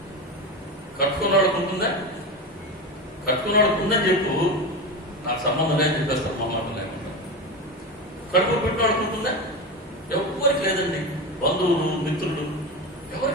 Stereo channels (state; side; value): normal; both; correlation 0.21